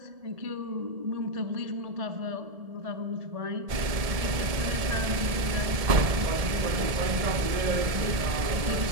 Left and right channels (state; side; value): late; left; 1.7 ms